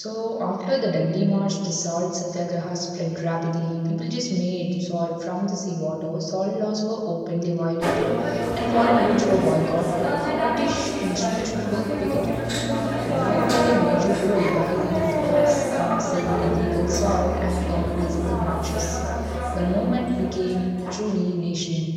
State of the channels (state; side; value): identical; both; correlation 1.00